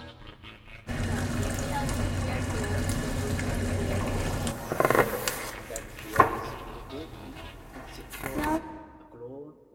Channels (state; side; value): identical; both; correlation 1.00